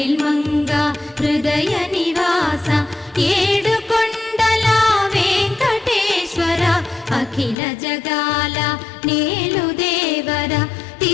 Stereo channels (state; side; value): drops out; right; at 7.6 s